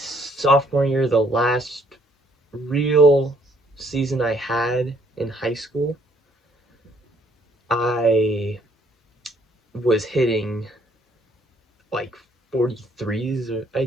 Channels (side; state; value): both; normal; correlation 0.65